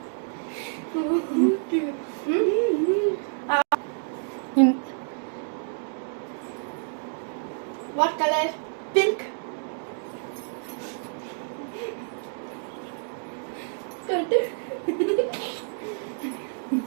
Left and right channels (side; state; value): left; silent; digital silence